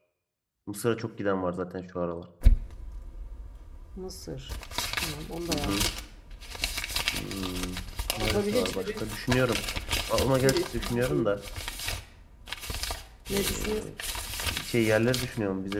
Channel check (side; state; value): both; identical; correlation 1.00